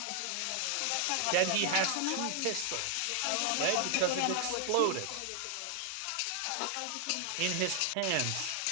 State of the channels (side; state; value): both; different; correlation 0.00